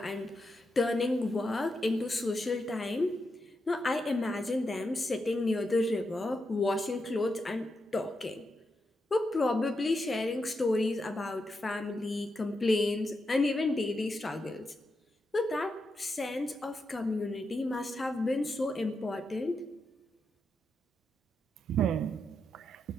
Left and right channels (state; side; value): normal; both; correlation 0.85